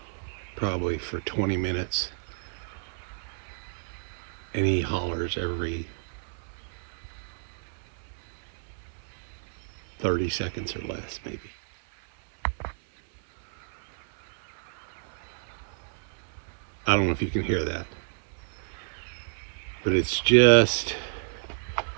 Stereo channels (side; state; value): left; silent; 58 dB below the other